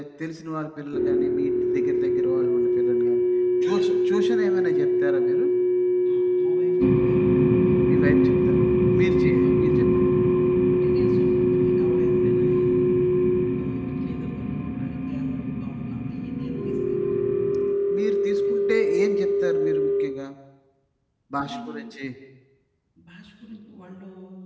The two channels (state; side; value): identical; both; correlation 1.00